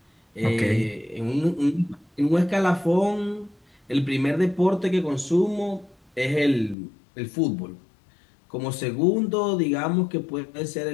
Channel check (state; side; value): drops out; right; at 6.8 s